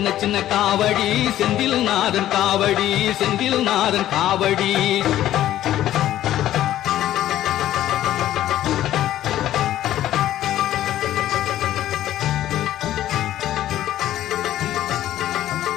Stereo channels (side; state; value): right; quieter; 13.0 dB